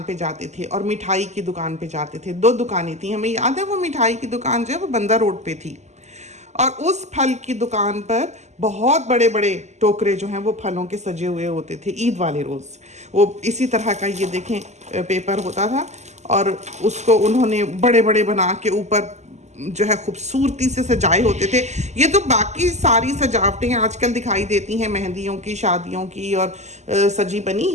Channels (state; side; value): late; left; 0.33 ms